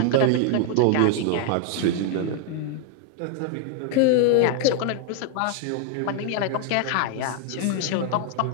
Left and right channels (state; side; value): different; both; correlation 0.00